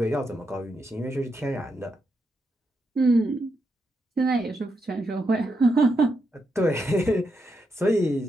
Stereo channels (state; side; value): normal; both; correlation 0.82